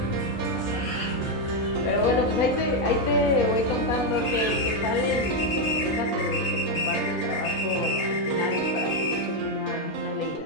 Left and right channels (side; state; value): both; normal; correlation 0.04